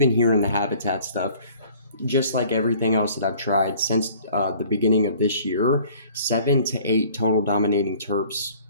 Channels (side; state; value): both; inverted; correlation -0.52